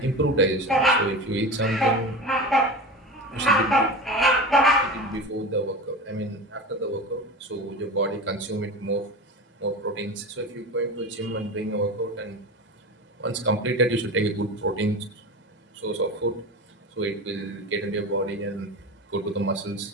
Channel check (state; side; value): normal; both; correlation 0.28